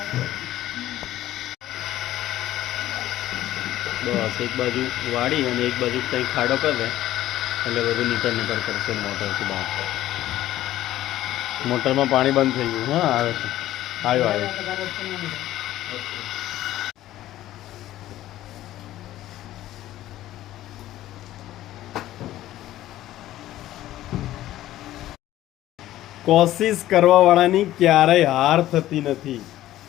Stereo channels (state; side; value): quieter; right; 14.2 dB